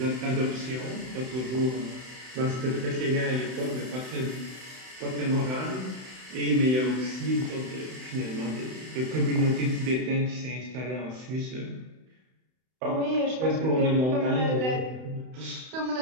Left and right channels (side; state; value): left; late; 31 ms